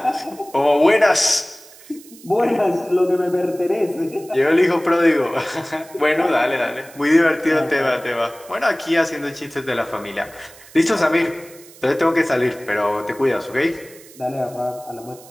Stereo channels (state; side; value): noise; right; hiss, 22 dB below the sound